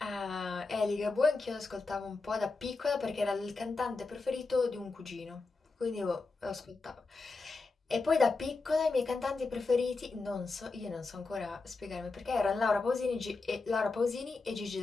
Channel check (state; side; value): quieter; right; 3.8 dB